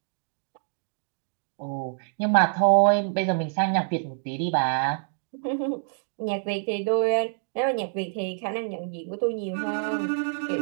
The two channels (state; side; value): silent; left; digital silence